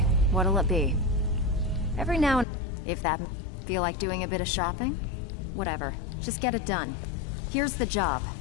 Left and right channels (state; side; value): drops out; right; at 2.5 s